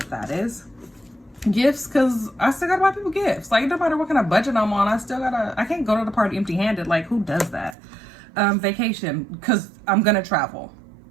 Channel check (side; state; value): left; drops out; at 7.8 s